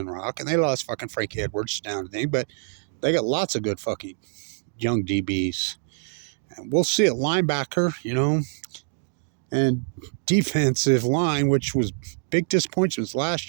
Rock and they lost fucking Frankie Edwards down to thing, but they got lots of good fucking young DBs. And we'll see at linebacker, and defensive line, which was big disappointments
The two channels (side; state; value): left; silent; digital silence